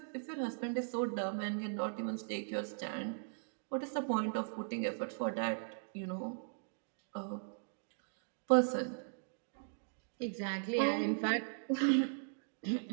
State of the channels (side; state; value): left; silent; digital silence